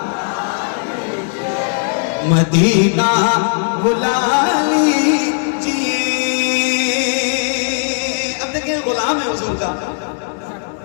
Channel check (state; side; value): silent; right; digital silence